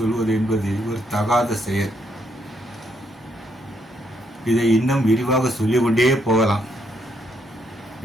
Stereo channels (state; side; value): normal; both; correlation 0.75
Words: என்பது ஒரு தகாத செயல். இதை இன்னும் விரிவாக சொல்லிக்கொண்டே போகலாம்.